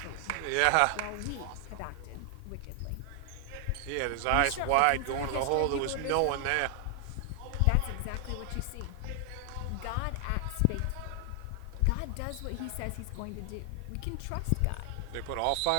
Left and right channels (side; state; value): both; different; correlation 0.00